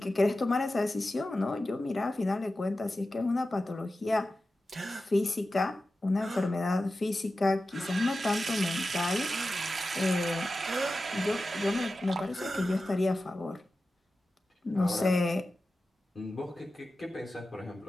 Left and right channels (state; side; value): normal; both; correlation 0.93